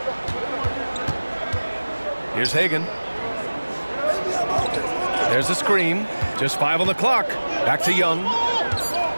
Here's Hagan. There's a screen. Just 5 on the clock. Back to Young.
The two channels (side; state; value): both; inverted; correlation -1.00